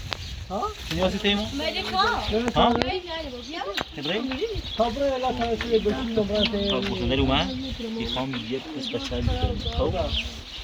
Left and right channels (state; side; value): identical; both; correlation 1.00